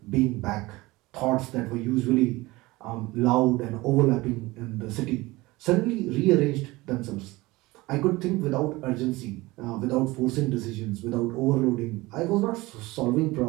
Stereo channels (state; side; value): quieter; left; 20.8 dB